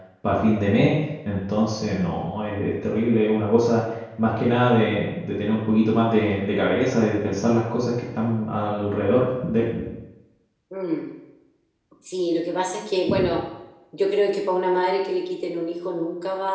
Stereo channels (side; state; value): both; identical; correlation 1.00